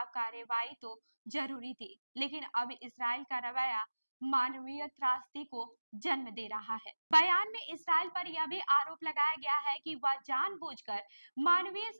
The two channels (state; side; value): inverted; both; correlation -1.00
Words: कार्रवाई तो जरूरी थी, लेकिन अब इसराइल का रवैया मानवीय त्रासदी को जन्म दे रहा है। बयान में इसराइल पर यह भी आरोप लगाया गया है कि वह जानबूझकर मानवीय